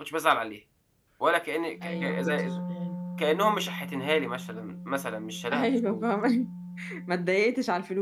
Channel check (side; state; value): both; identical; correlation 1.00